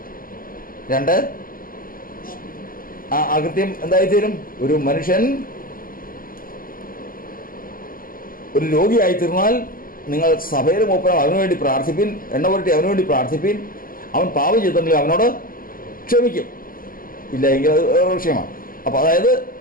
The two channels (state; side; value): late; right; 0.41 ms